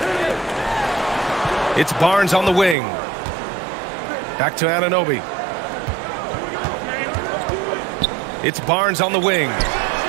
It's Barnes on the wing. Back to Anunoby. It's Barnes on the wing.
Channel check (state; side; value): drops out; left; at 2.8 s